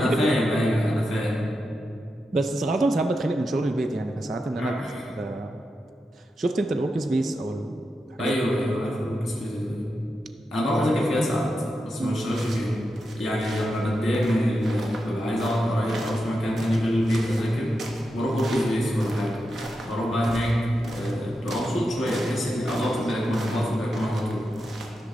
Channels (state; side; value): normal; both; correlation 0.88